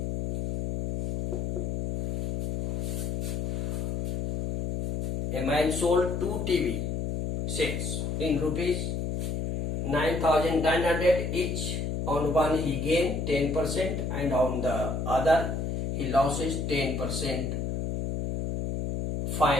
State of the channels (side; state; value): left; noise; hum, 2 dB below the sound